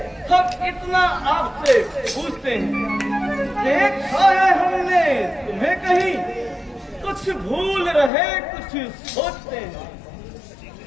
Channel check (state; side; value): drops out; right; at 8.1 s